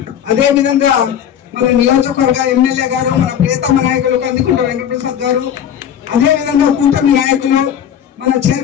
అదే విధంగా మన నియోజకవర్గ ఎమ్మెల్యే గారు, మన ప్రియతమ నాయకులు కందికుంట వెంకటప్రసాద్ గారు, అదే విధంగా కూటమి నాయకులు మన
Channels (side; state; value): right; quieter; 9.4 dB